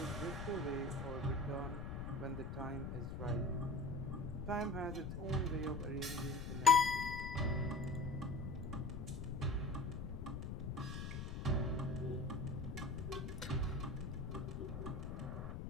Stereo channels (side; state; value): left; noise; rumble, 5 dB below the sound